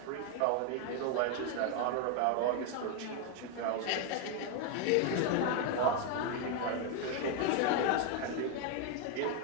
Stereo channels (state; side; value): different; both; correlation 0.01